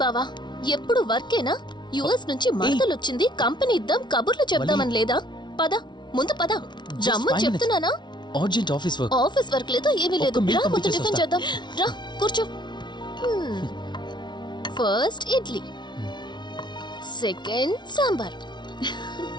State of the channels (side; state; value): right; late; 0.21 ms